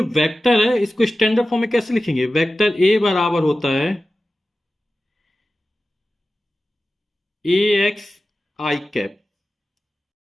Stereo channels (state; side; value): normal; both; correlation 0.95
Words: वेक्टर है, इसको स्टैंडर्ड फॉर्म में कैसे लिखेंगे? वेक्टर ए बराबर होता है ए एक्स आई कैप